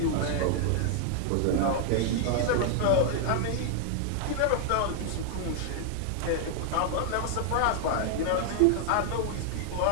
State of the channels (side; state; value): both; different; correlation 0.00